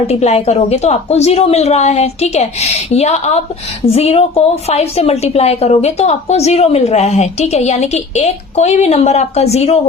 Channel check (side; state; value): right; quieter; 4.1 dB